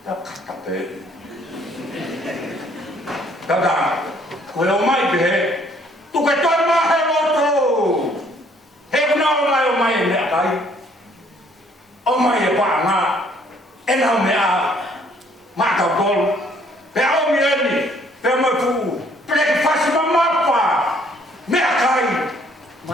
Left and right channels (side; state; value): both; normal; correlation 0.63